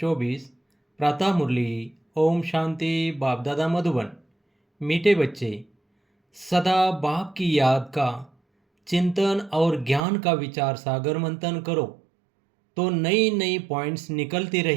प्रातः मुरली। ओम शांति। बाप दादा मधुबन। मीठे बच्चे, सदा बाप की याद का चिंतन और ज्ञान का विचार सागर मंथन करो तो नई नई पॉइंट्स निकलती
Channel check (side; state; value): left; drops out; at 10.0 s